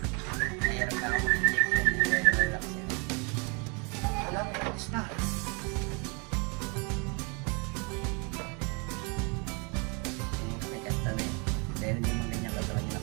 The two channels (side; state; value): left; quieter; 32.9 dB